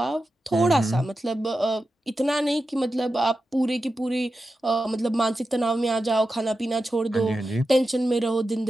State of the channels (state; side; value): normal; both; correlation 0.91